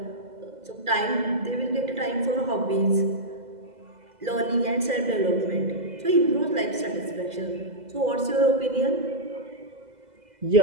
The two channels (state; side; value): late; left; 2.0 ms